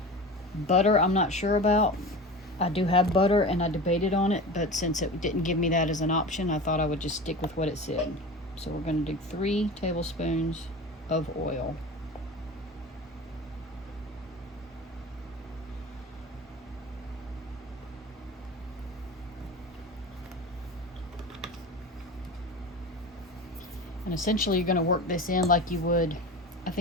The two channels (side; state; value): both; normal; correlation 0.31